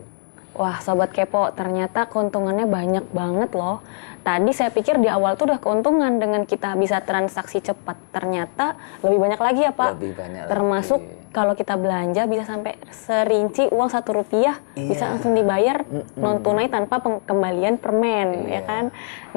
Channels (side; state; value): right; silent; digital silence